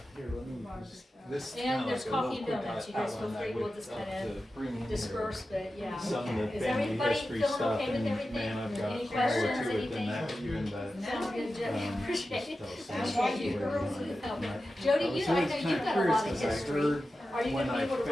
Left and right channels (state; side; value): normal; both; correlation 0.93